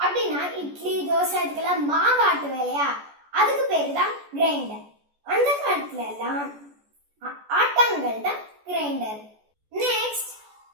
அப்படின்னா இட்லி தோசை இதுக்கெல்லாம் மாவு ஆட்டுவோம் இல்லையா, அதுக்கு பேர் தான் கிரைண்டர். அந்த காலத்துல எல்லாம் ஆட்டாங்கல் தான் grinder. Next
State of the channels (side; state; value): left; late; 14 ms